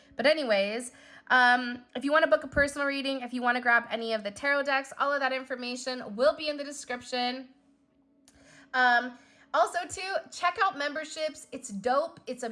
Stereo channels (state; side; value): identical; both; correlation 1.00